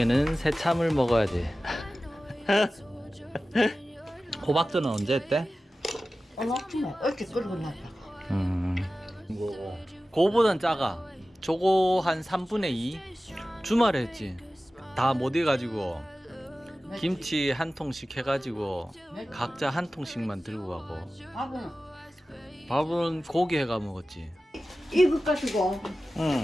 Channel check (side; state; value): both; normal; correlation 0.95